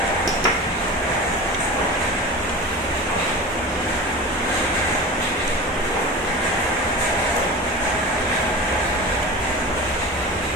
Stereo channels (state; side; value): normal; both; correlation 0.31